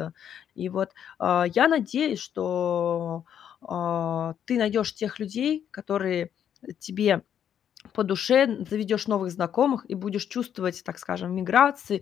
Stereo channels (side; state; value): right; quieter; 9.2 dB